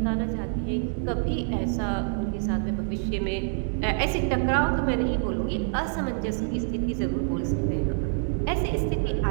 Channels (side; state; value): left; silent; 60 dB below the other